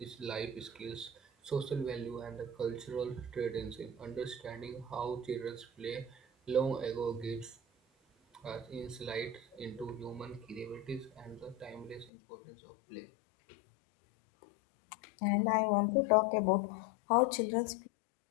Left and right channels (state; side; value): drops out; right; at 12.1 s